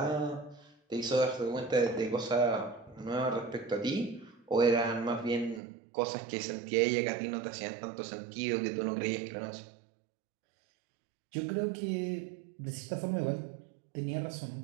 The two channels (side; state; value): left; drops out; at 5.6 s